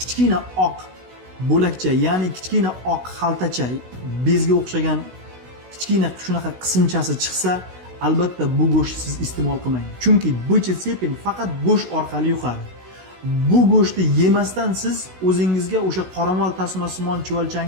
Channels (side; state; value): left; late; 16 ms